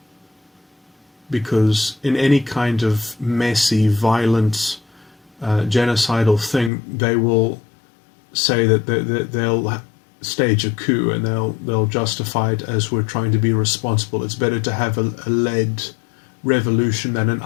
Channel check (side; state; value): right; drops out; at 6.7 s